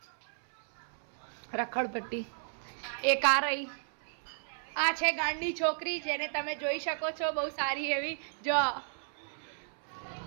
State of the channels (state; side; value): silent; left; 55 dB below the other